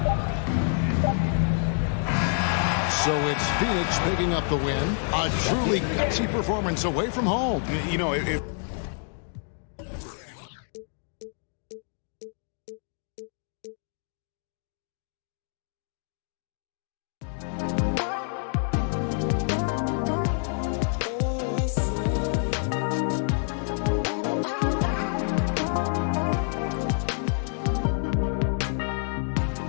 So it's Phoenix picking up the win. A truly gutsy performance away from home. You know, if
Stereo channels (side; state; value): right; silent; 60 dB below the other